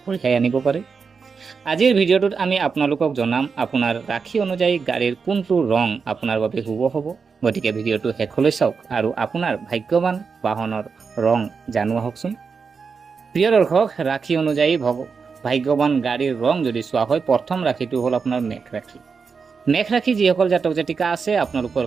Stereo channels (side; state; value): left; quieter; 5.4 dB